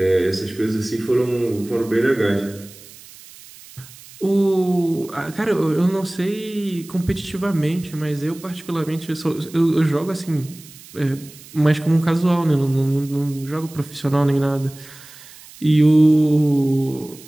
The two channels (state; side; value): noise; right; hiss, 20 dB below the sound